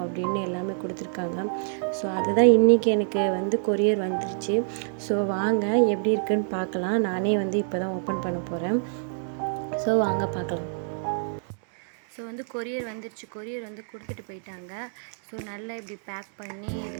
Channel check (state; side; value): silent; left; digital silence